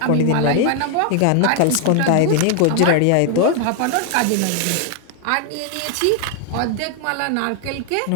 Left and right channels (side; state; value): both; different; correlation 0.00